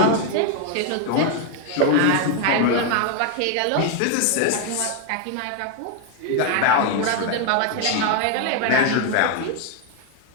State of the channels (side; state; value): both; different; correlation 0.01